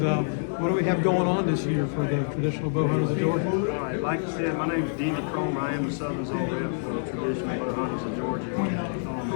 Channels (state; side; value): silent; right; 60 dB below the other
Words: what do we have going on this year for the Traditional Bow Hunters of Georgia? All right, like I said, my name is Denny Cromer. I am the Southern Zone rep for the Traditional Bow Hunters of Georgia.